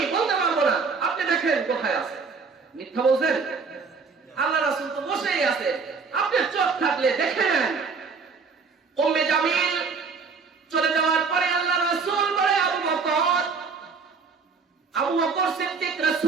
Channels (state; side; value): quieter; left; 5.0 dB